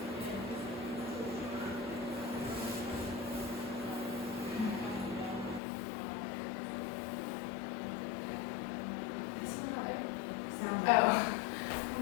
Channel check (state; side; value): drops out; right; at 5.6 s